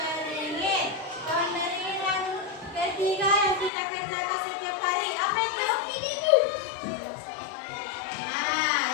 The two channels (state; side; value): drops out; right; at 3.7 s